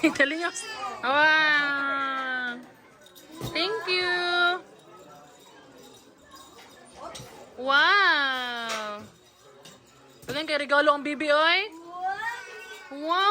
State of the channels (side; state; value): both; identical; correlation 1.00